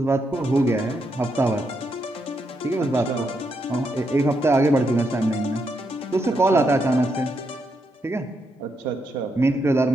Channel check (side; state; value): both; normal; correlation 0.81